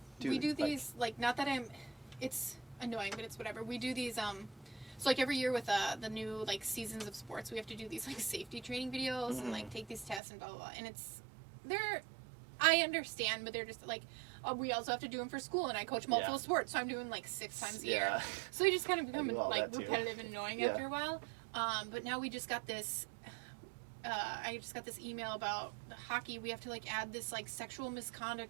dude. We do these, like not that it's annoying, but it's whatever. We do these, so like every year with the new like seasons of sports, we have to do these like safety training videos and like take these tests and blah, blah, blah. And I understand, but they're just like, we also have to do them for school, and I coach multiple sports, so I'm doing like 6 times a year. So they just kind of become like repetitive and annoying after a while. But now we just got this. I just got this email about hockey. We have to like add this like sexual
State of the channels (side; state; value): left; drops out; at 10.2 s